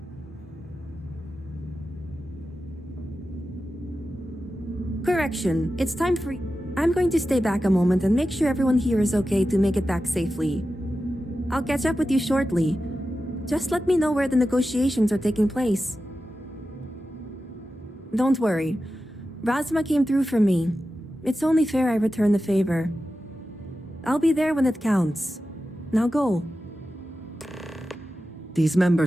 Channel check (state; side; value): normal; both; correlation 0.92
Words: Correction, it's time for... I'm going to stay back a moment and make sure everyone here is okay to make it back safely. I'll catch up with you shortly. Just let me know where the negotiations are taking place. Don't worry. Razma came through for me. It's only fair I return the favor. I'll be there when it counts. Now go. These